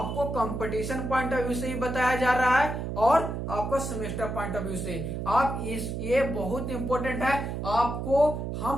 कंपटीशन पॉइंट ऑफ व्यू से ही बताया जा रहा है और आपको सेमेस्टर पॉइंट ऑफ व्यू से। आप ये बहुत इंपॉर्टेंट है, आपको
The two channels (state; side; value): noise; right; hum, 4 dB below the sound